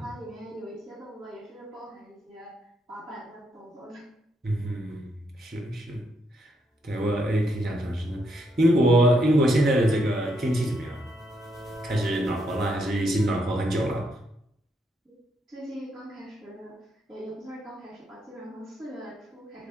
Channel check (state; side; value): normal; both; correlation 0.77